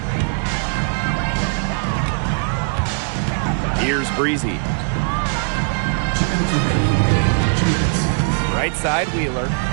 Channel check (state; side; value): silent; left; 61 dB below the other